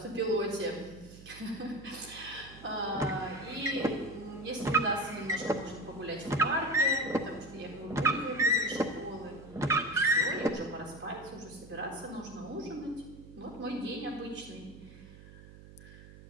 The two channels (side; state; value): right; noise; hum, 18 dB below the sound